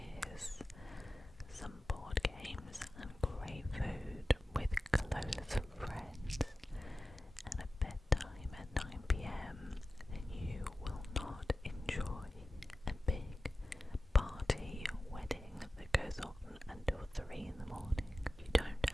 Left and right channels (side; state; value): both; normal; correlation 0.95